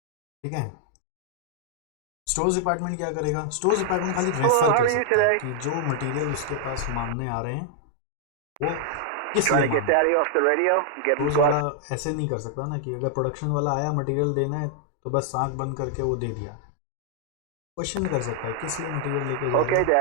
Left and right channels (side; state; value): both; different; correlation 0.00